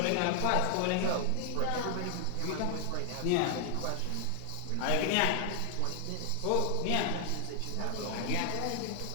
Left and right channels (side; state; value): both; different; correlation 0.00